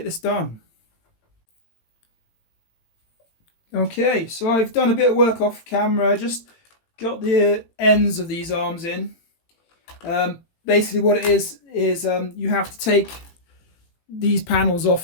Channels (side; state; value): right; late; 18 ms